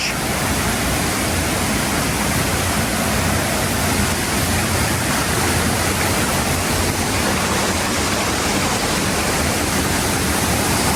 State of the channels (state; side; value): identical; both; correlation 1.00